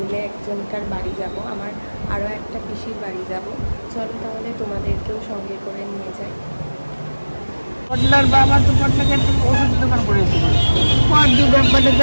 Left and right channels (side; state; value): both; inverted; correlation -1.00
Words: একজনকার বাড়ি যাব, আমার আরও একটা পিসির বাড়ি যাব। চলো তাহলে তোমাদেরকেও সঙ্গে করে নিয়ে যাই। পটলার বাবা তো পটলাকে ওষুধ দোকান করেছে,